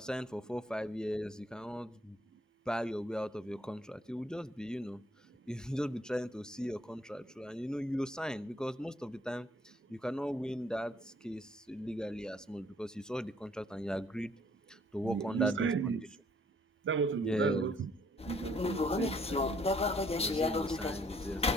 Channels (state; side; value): normal; both; correlation 0.64